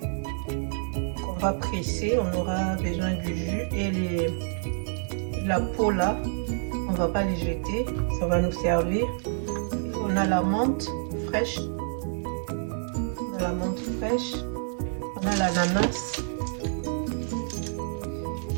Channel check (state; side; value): silent; left; digital silence